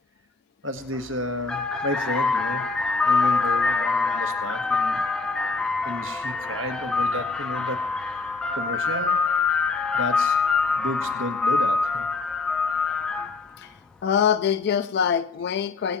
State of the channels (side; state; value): right; quieter; 4.1 dB